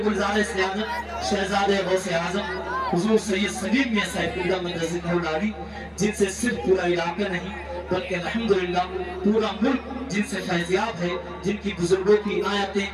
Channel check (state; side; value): identical; both; correlation 1.00